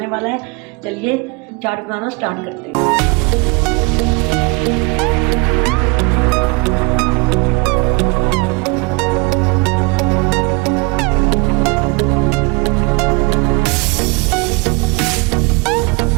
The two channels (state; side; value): quieter; left; 28.6 dB